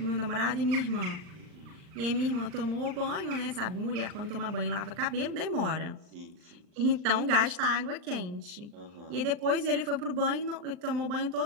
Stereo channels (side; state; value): left; late; 39 ms